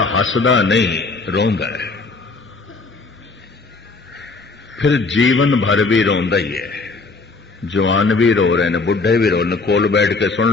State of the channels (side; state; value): right; quieter; 3.9 dB